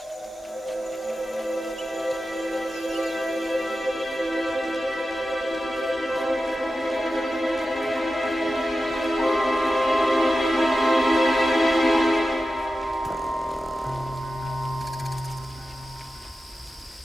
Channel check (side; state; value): both; normal; correlation 0.93